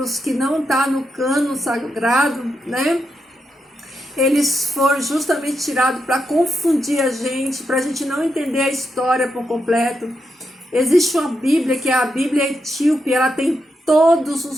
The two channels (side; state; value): both; normal; correlation 0.84